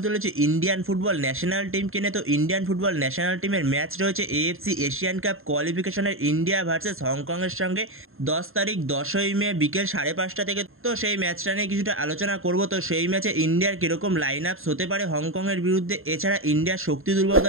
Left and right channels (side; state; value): left; late; 0.61 ms